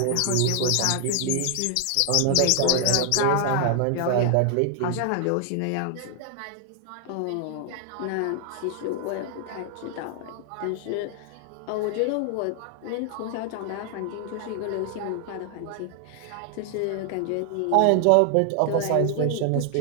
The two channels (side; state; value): both; different; correlation 0.00